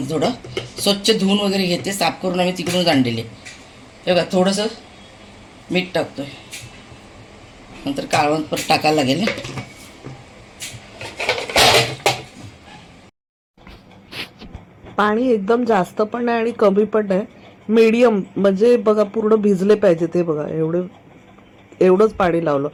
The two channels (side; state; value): both; identical; correlation 1.00